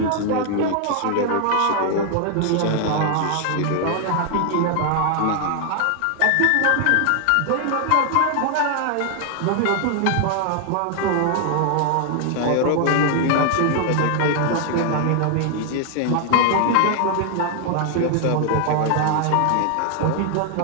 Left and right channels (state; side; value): different; both; correlation 0.00